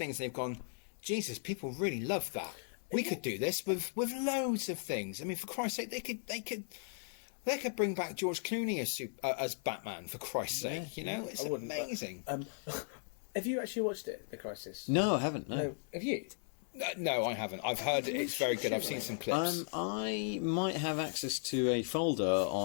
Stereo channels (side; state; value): right; silent; digital silence